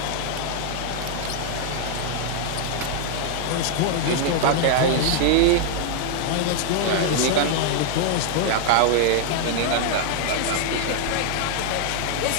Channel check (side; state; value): both; different; correlation 0.00